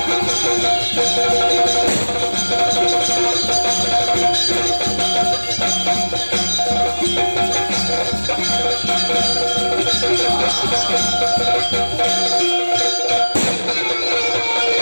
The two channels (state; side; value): inverted; both; correlation -1.00